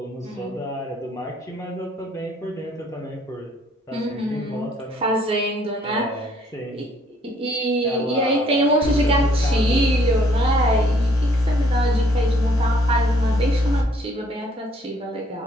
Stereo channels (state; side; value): normal; both; correlation 0.63